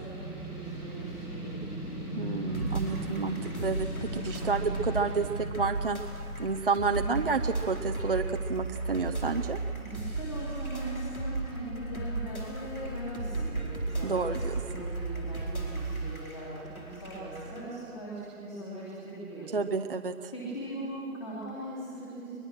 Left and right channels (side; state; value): left; quieter; 3.0 dB